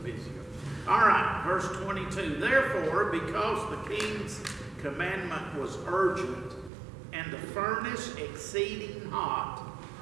busier. All right, verse 22. Therefore, because the king's commandment was urgent, and the furnace exceeding hot,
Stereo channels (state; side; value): drops out; left; at 6.7 s